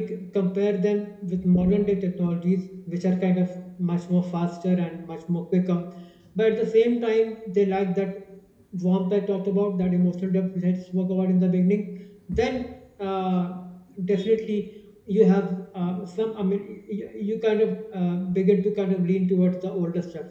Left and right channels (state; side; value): identical; both; correlation 1.00